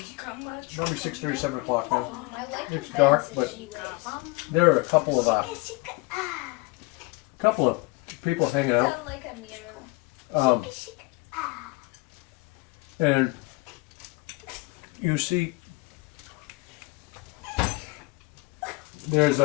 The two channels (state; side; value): quieter; right; 25.3 dB